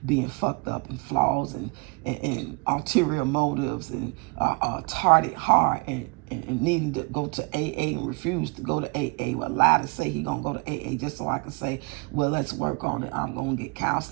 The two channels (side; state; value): left; quieter; 31.6 dB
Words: being fucked up and flaws and ulterior motives and tarted hard and needing to go to AA and refuse to go to AA. Well, lie to say he going to go to AA just so I can say, well, let's work on it. I'm going to get